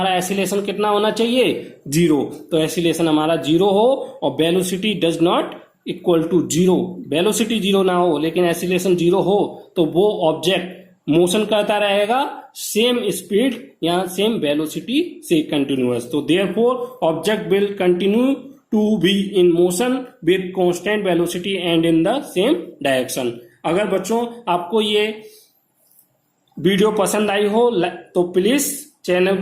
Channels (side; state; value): both; identical; correlation 1.00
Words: एसिलेशन कितना होना चाहिए, जीरो। तो एसिलेशन हमारा जीरो हो और velocity does not equal to zero, velocity zero ना हो लेकिन एसिलेशन जीरो हो, तो वो ऑब्जेक्ट मोशन करता रहेगा सेम स्पीड या सेम वेलोसिटी से कंटिन्यूअस। तो therefore object will continue to be in motion with constant velocity and in the same direction. अगर बच्चों आपको ये वीडियो पसंद आई हो तो प्लीज चैनल